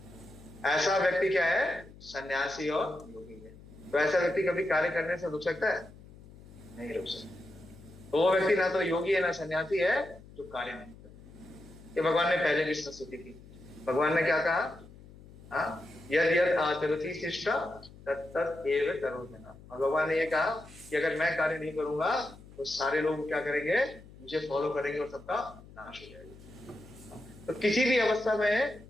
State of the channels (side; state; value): left; noise; hum, 20 dB below the sound